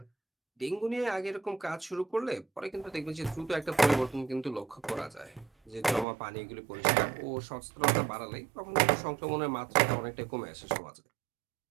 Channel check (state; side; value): drops out; left; at 6.1 s